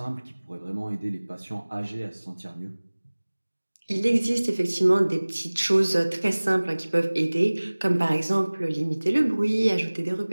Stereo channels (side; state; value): both; inverted; correlation -1.00